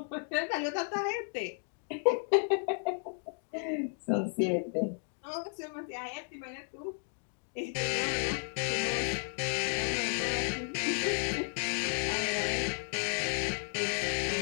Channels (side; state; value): right; silent; 55 dB below the other